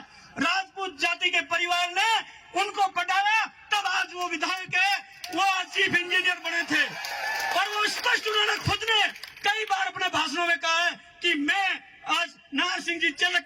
राजपूत जाति के परिवार ने उनको पटाया, तब आज वो विधायक है, वो आज चीफ इंजीनियर बने थे। और वो स्पष्ट उन्होंने खुद ने कई बार अपने भाषणों में कहा है कि मैं आज नाहर सिंह जी चलक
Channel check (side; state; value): both; identical; correlation 1.00